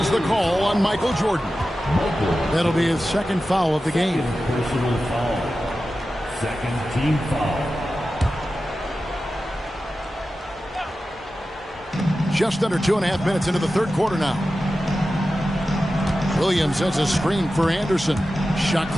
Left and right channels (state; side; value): normal; both; correlation 0.93